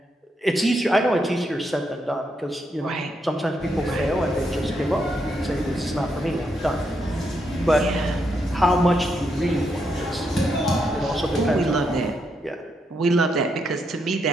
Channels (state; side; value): normal; both; correlation 0.80